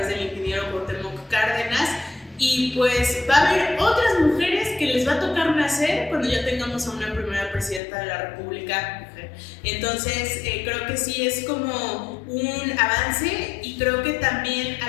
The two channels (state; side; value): drops out; right; at 7.8 s